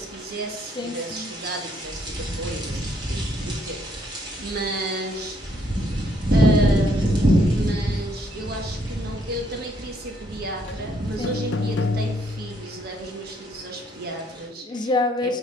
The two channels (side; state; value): both; normal; correlation 0.69